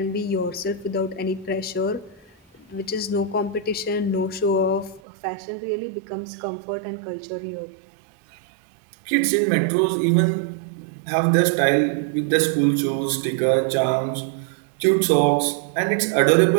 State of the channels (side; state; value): left; drops out; at 5.0 s